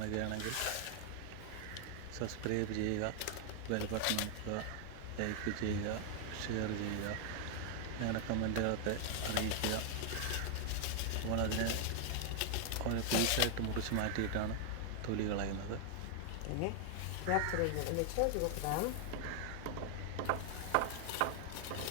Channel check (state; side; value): different; both; correlation 0.00